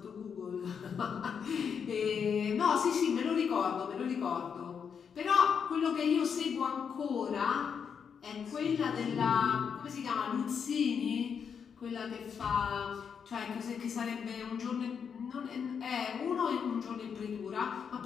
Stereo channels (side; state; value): right; quieter; 6.9 dB